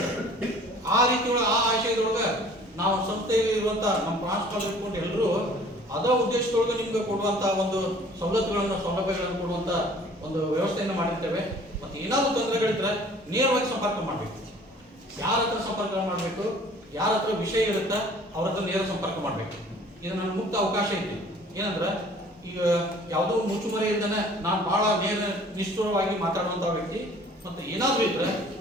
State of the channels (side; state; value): both; normal; correlation 0.51